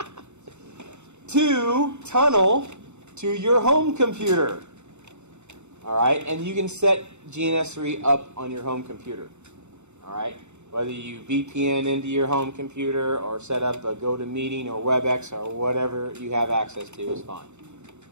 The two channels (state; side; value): late; left; 0.83 ms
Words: to tunnel to your home computer. All right, and you can set GNS3 up on your home computer. All right, whether you VPN into your home computer or set up a GoToMeeting or WebEx or whatever you have access to is fine.